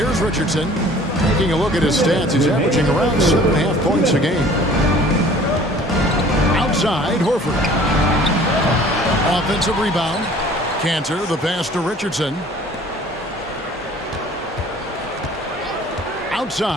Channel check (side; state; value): both; normal; correlation 0.50